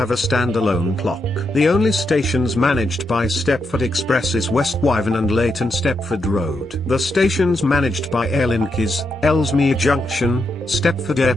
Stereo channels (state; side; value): normal; both; correlation 0.83